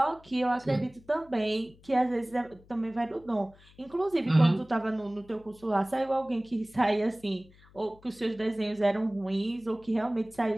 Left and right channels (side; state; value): left; noise; hum, 26 dB below the sound